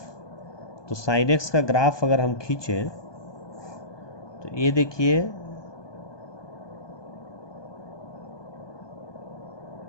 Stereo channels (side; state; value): right; late; 1.2 ms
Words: तो साइन एक्स का ग्राफ अगर हम खींचें तो ये देखिए,